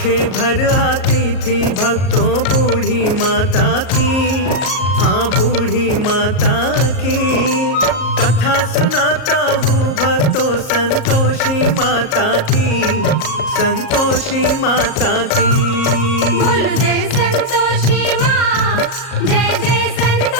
भर आती थी भक्तों बूढ़ी माता की, हाँ बूढ़ी माता की। कथा सुनाता हूँ भक्तों संतोषी माता की, संतोषी माता की। बोल जय संतोषी माँ, जय जय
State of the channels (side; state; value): right; late; 38 ms